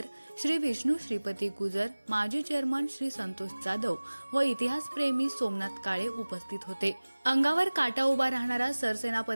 श्री विष्णू श्रीपती गुजर, माजी चेअरमन श्री संतोष जाधव व इतिहासप्रेमी सोमनाथ काळे उपस्थित होते। अंगावर काटा उभा राहणारा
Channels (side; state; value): both; inverted; correlation -1.00